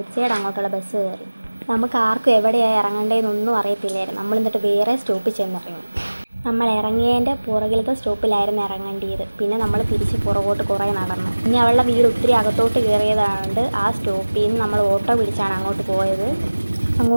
അങ്ങോട്ടുള്ള ബസ് കയറി. നമുക്ക് ആർക്കും എവിടെയാണ് ഇറങ്ങേണ്ടതെന്നൊന്നും അറിയത്തില്ലായിരുന്നു. നമ്മൾ എന്നിട്ട് വേറെ സ്റ്റോപ്പിൽ ചെന്നിറങ്ങി. നമ്മൾ ഇറങ്ങിയതിൻ്റെ പുറകിലത്തെ സ്റ്റോപ്പിലായിരുന്നു ഇറങ്ങേണ്ടത്. പിന്നെ നമ്മൾ തിരിച്ച് പുറകോട്ട് കുറേ നടന്നു. ഇനി അവളുടെ വീട് ഒത്തിരി അകത്തോട്ട് കയറിയതായതുകൊണ്ട് ആ സ്റ്റോപ്പിൽ നിന്ന് നമ്മൾ ഓട്ടോ പിടിച്ചാണ് അങ്ങോട്ട് പോയത്.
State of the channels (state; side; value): inverted; both; correlation -1.00